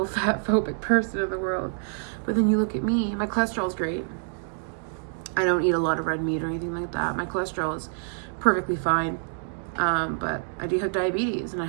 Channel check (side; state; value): left; silent; digital silence